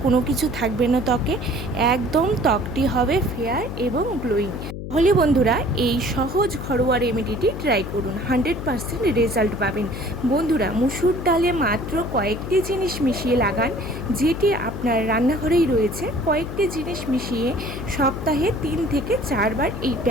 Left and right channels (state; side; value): noise; left; hum, 8 dB below the sound